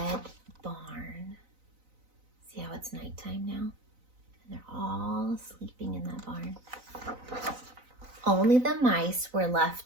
barn. See how it's nighttime now? And they're all sleeping in that barn. Only the mice were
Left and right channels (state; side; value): late; left; 4.0 ms